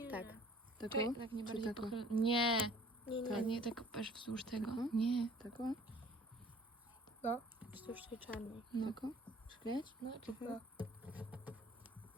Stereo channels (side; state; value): both; normal; correlation 0.52